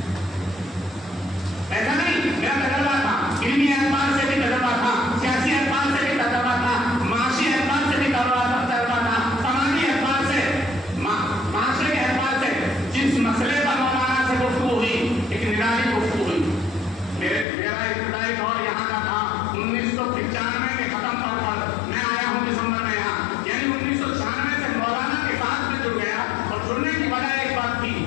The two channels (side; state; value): right; drops out; at 17.4 s